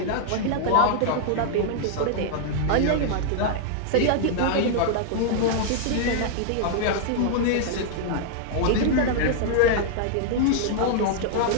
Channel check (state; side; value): different; both; correlation -0.01